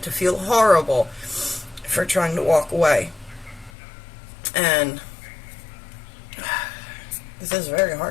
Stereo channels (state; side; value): drops out; right; at 3.7 s